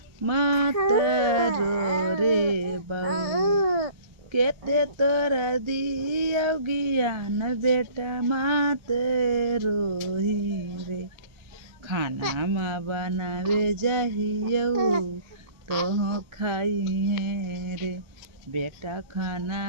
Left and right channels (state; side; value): late; left; 1.4 ms